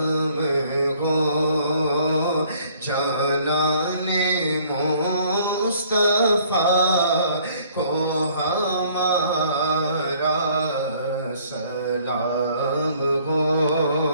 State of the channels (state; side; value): inverted; both; correlation -0.59